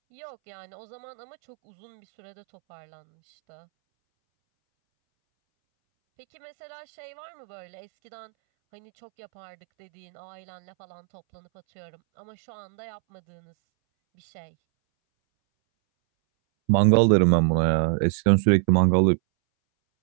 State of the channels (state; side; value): silent; left; 61 dB below the other